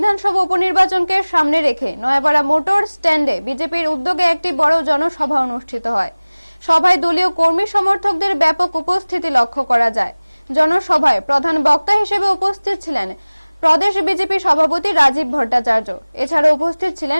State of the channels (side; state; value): both; inverted; correlation -1.00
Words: উপনির্বাচনকে সামনে রেখে নয়াপাড়া মোটর স্ট্যান্ডে বিজেপির উদ্যোগে একটি বড় জনসভা অনুষ্ঠিত হয়। সভায় দলীয় কর্মী সমর্থকদের ব্যাপক উপস্থিতি লক্ষ্য করা যায়। জনসভায় প্রধান বক্তা হিসেবে উপস্থিত ছিলেন প্রদেশ বিজেপি সভাপতি রাজীব ভট্টাচার্য। এছাড়া উপস্থিত